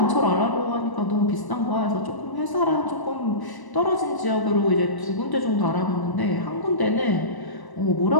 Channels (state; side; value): late; right; 1.0 ms